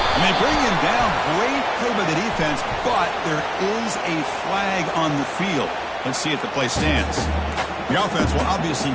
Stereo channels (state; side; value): identical; both; correlation 1.00